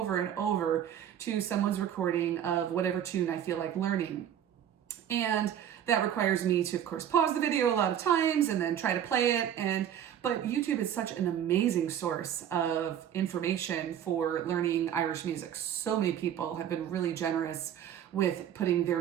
and over to someone's recording of whatever tune I feel like learning. And that requires me to, of course, pause the video a lot of times and then try to play it. But YouTube is such an amazing source of information for learning Irish music. So many people have been really generous with putting their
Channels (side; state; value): left; quieter; 9.9 dB